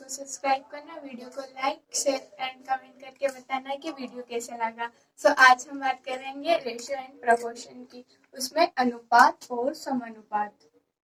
सब्सक्राइब करना, वीडियो को लाइक शेयर एंड कमेंट करके बताना कि वीडियो कैसा लगा। आज हम बात करेंगे रेशियो एंड प्रोपोर्शन की, उसमें अनुपात और समानुपात।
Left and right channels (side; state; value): both; identical; correlation 1.00